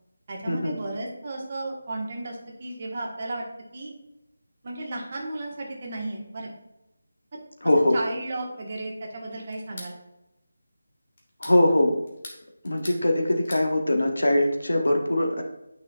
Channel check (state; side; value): inverted; both; correlation -0.94